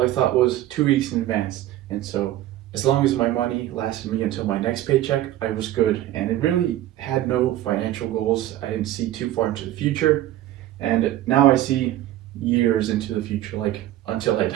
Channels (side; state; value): left; quieter; 14.0 dB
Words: I thought was 2 weeks in advance. And so as long as my money lasted me until my next paycheck, I was good. And it really had no financial goals. I didn't see too far into the future. And now I see years into the future, like until I